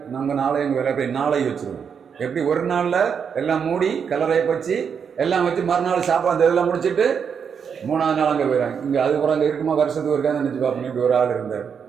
நம்ம நாளை எங்கள் வேலை போய் நாளை வச்சுருவோம். எப்படி ஒரு நாளில் எல்லாம் மூடி கலரை வச்சு எல்லாம் வச்சு மறுநாள் சாப்பாடு இதெல்லாம் முடிச்சுட்டு 3ஆவது நாள் அங்கே போயிடறாங்க. இங்கே அதுக்கப்புறம் அங்கே இருக்குமா வருஷத்துக்கு இருக்கான்னு நினச்சி பார்ப்போம். இப்படி ஒரு ஆள் இருந்தார்.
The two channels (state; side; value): quieter; left; 6.9 dB